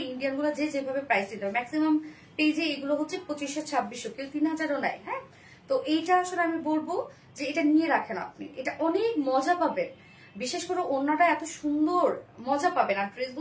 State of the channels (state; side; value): identical; both; correlation 1.00